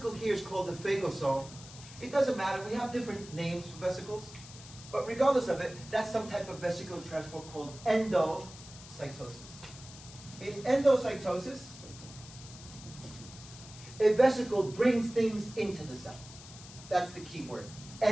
here is called the phagosome. It doesn't matter, we have different names for vesicles, but regardless of it, that's some type of vesicular transport called endocytosis. In endocytosis, a vesicle brings things into the cell. That's the key word.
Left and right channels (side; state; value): left; noise; hiss, 17 dB below the sound